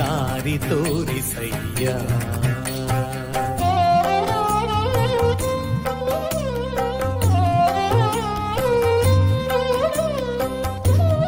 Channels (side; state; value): both; identical; correlation 1.00